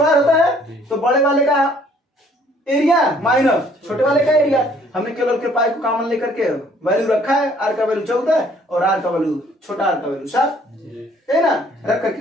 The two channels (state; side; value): normal; both; correlation 0.60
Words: होता है, तो बड़े वाले का एरिया माइनस छोटे वाले का एरिया। हमने केवल के पाई को कॉमन लेकर के वैल्यू रखा है, आर का वैल्यू 14 और आर का वैल्यू छोटा आर का वैल्यू 7 है ना। रख करके